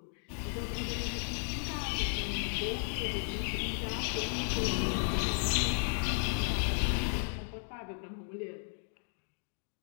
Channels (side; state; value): right; silent; 55 dB below the other